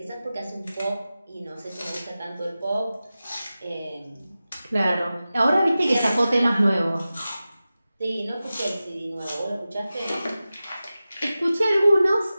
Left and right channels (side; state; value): both; inverted; correlation -0.95